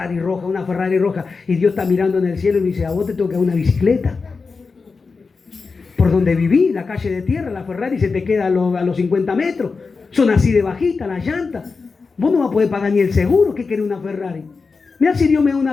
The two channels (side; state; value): right; quieter; 4.6 dB